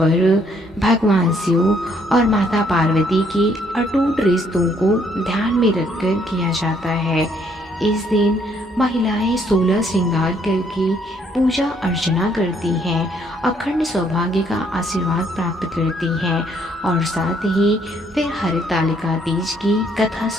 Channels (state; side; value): normal; both; correlation 0.67